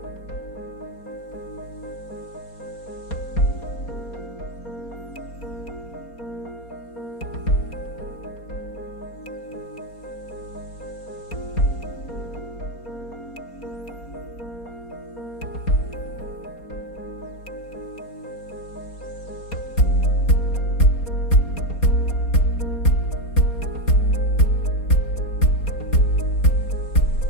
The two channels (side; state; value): right; late; 4.3 ms